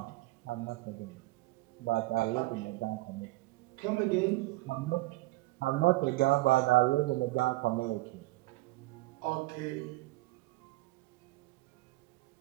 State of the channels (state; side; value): quieter; left; 19.8 dB